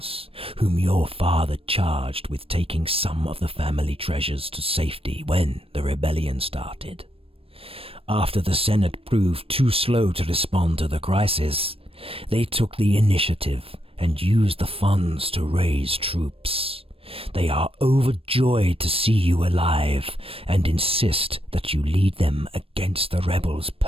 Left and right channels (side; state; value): left; late; 0.28 ms